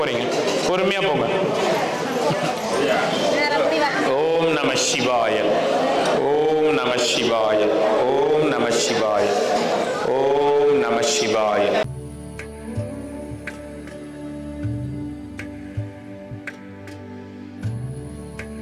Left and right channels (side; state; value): both; identical; correlation 1.00